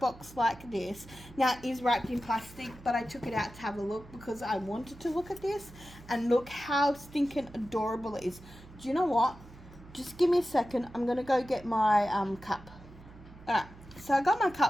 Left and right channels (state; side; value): noise; right; hum, 19 dB below the sound